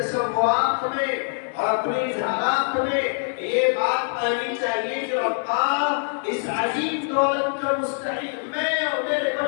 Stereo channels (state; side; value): silent; right; 60 dB below the other